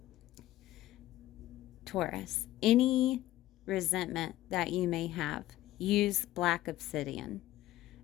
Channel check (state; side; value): quieter; right; 15.1 dB